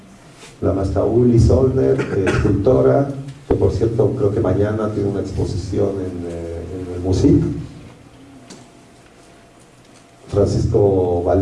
La maestra Uli Solner, escultora, que por cierto creo que mañana tiene una exposición en el MUSIC. Francisco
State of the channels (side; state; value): both; identical; correlation 1.00